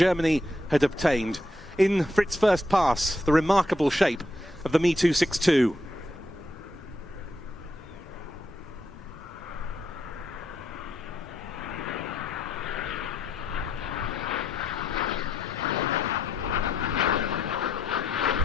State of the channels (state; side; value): normal; both; correlation 0.77